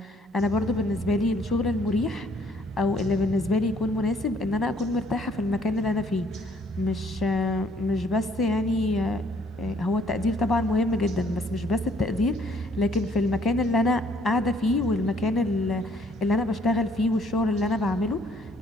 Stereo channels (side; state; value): both; normal; correlation 0.63